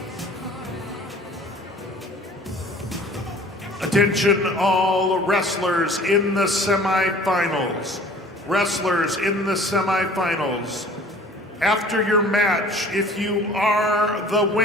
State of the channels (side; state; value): both; normal; correlation 0.49